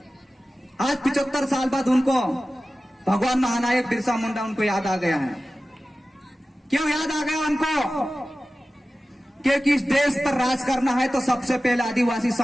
आज 75 साल बाद उनको भगवान महानायक बिरसा मुंडा उनको याद आ गया है। क्यों याद आ गया उनको? क्योंकि इस देश पर राज करना है तो सबसे पहले आदिवासी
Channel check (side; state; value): both; normal; correlation 0.95